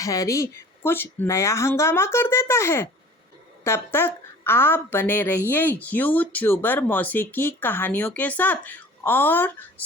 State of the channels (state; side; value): normal; both; correlation 0.46